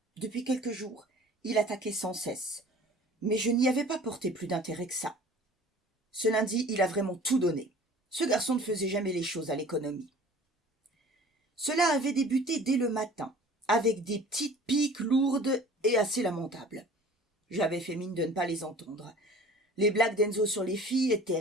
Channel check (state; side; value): normal; both; correlation 0.45